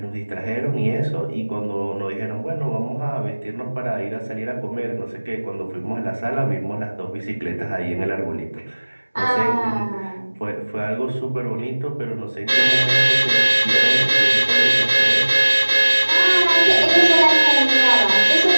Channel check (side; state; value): both; inverted; correlation -1.00